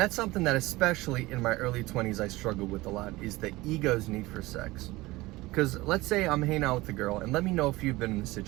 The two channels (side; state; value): left; quieter; 20.1 dB